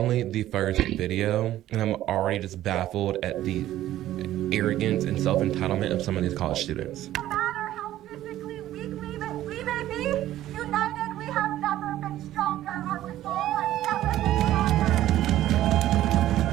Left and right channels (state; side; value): quieter; left; 13.6 dB